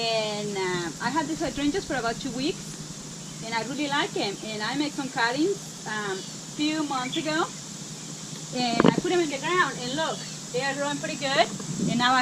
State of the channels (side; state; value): both; identical; correlation 1.00